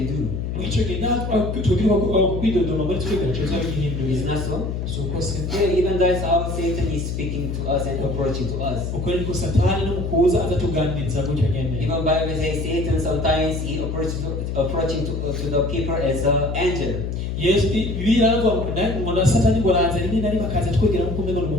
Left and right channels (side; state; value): left; noise; hum, 3 dB below the sound